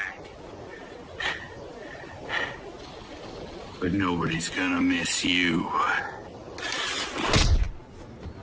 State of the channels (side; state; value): both; identical; correlation 1.00